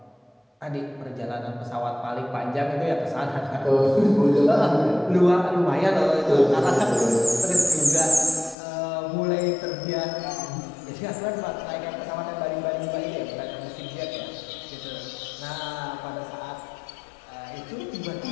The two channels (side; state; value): right; drops out; at 8.6 s